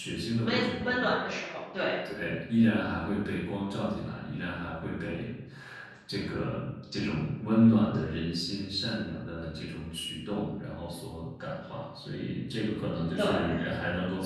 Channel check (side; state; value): both; identical; correlation 1.00